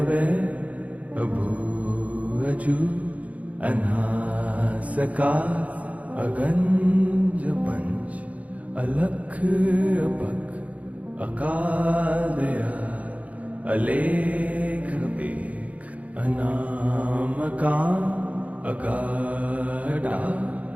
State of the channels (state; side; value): late; left; 0.068 ms